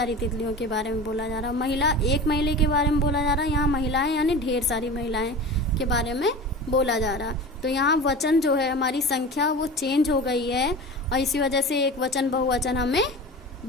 तितलियों के बारे में बोला जा रहा है। महिला एक महिला के बारे में बोला जा रहा है, यहाँ महिलाएं यानी ढेर सारी महिलाएं के बारे में बोला जा रहा। तो यहाँ वचन जो है, हमारी संख्या वो चेंज हो गई है और इसी वजह से एक वचन बहुवचन हमें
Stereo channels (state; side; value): normal; both; correlation 0.33